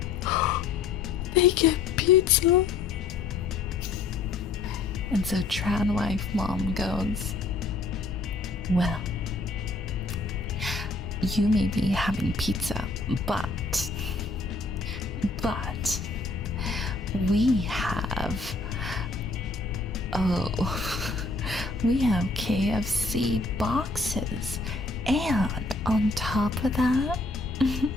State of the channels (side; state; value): right; quieter; 3.8 dB